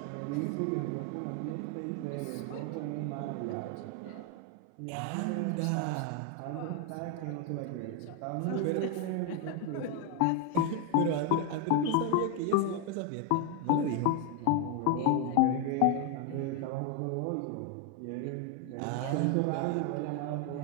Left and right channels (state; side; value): different; both; correlation 0.01